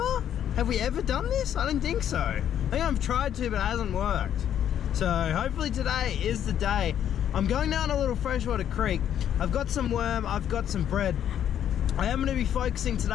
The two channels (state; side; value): quieter; right; 10.0 dB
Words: Have we ever done this? I don't think so. I think I've tried to, but it hasn't worked. So hopefully today is the day. I'm going down a little freshwater creek. I've got some worm, I've got some bread. I am going to be focusing